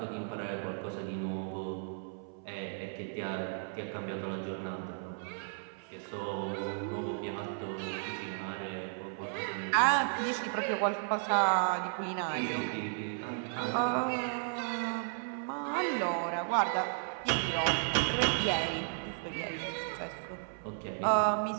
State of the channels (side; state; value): left; silent; 55 dB below the other